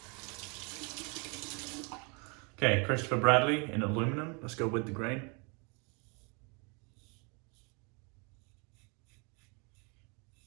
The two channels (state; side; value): quieter; left; 33.3 dB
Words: Okay, Christopher Bradley in aluminum. Let's go with the grain.